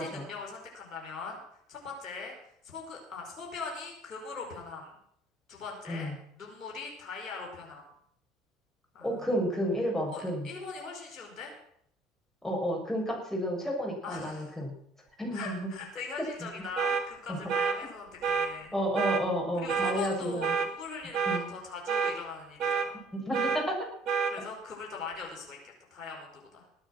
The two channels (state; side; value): normal; both; correlation 0.58